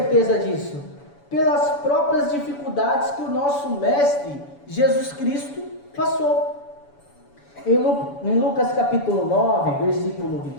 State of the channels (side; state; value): right; late; 7.0 ms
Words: disso? Pelas próprias dificuldades que o nosso Mestre Jesus Cristo passou. Em Lucas capítulo 9, versículo